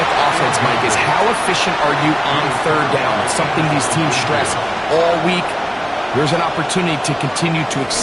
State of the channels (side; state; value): both; identical; correlation 1.00